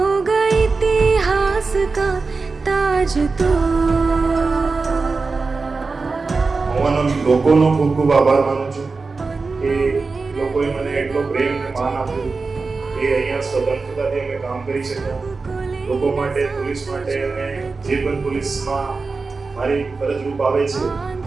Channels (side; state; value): left; quieter; 4.1 dB